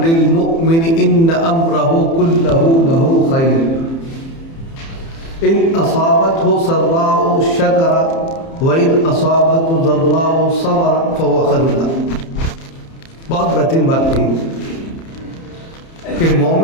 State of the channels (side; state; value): right; late; 30 ms